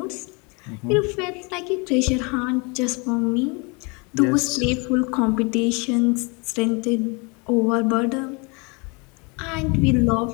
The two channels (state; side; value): quieter; right; 30.6 dB